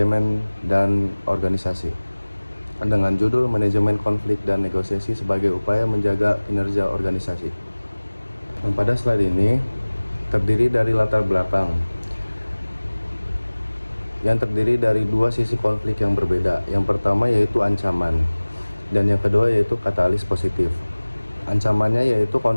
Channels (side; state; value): both; inverted; correlation -1.00